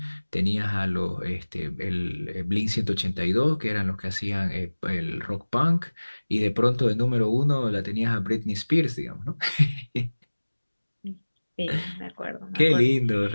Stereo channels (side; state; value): both; inverted; correlation -1.00